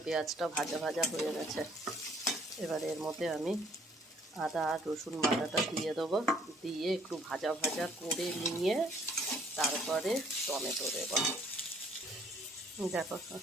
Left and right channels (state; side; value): normal; both; correlation 0.61